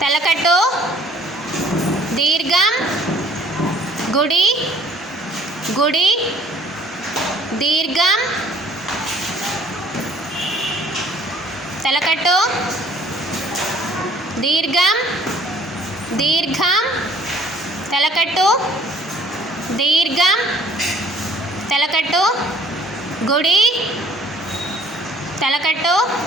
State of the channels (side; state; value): both; normal; correlation 0.56